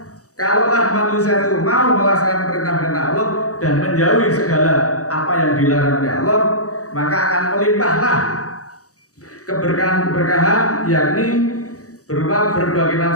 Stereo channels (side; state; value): right; late; 0.66 ms